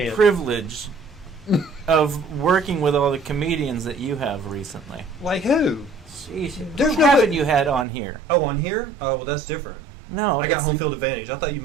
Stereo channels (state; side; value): drops out; left; at 7.9 s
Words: privilege of working with all the comedians that you have recently. Like who? Sheesh. There's Who no haven't way- you had on here? Oh, on here? Oh, well, that's different. No, I got that's- home field advantage. I thought you